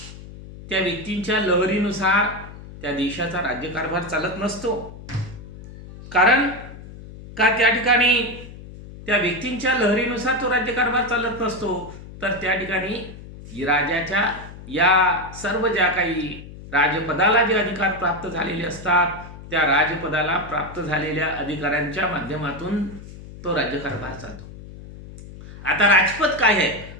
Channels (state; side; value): noise; left; hum, 15 dB below the sound